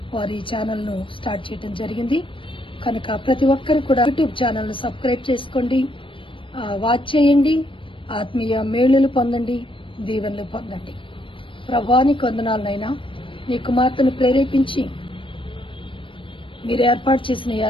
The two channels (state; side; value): late; right; 0.25 ms